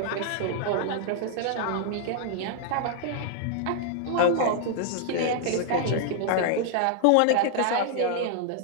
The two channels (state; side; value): different; both; correlation 0.00